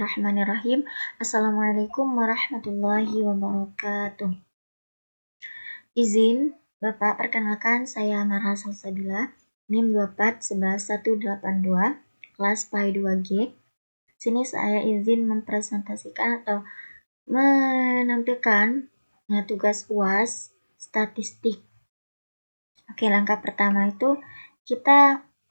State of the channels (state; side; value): inverted; both; correlation -1.00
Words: Assalamualaikum warahmatullahi wabarakatuh. Izin Bapak, perkenalkan saya Marha Salsabila, NIM 2411182, kelas PAI 2G. Sini saya izin mempresentasikan atau menampilkan tugas UAS statistik. Oke, langkah pertama itu kita